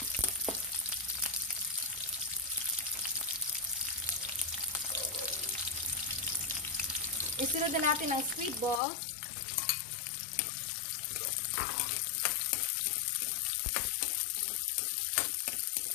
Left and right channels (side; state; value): right; drops out; at 8.8 s